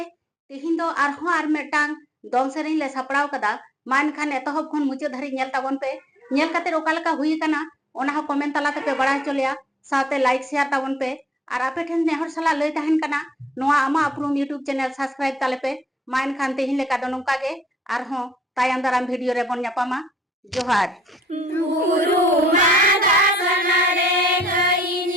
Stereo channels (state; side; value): normal; both; correlation 0.67